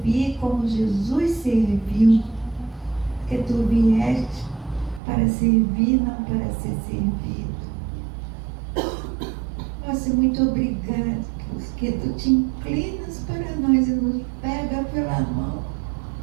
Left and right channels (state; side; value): drops out; left; at 5.0 s